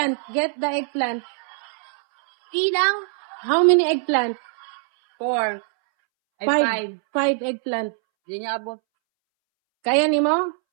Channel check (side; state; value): left; silent; 64 dB below the other